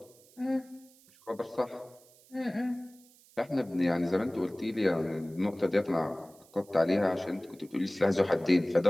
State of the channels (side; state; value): right; noise; hiss, 27 dB below the sound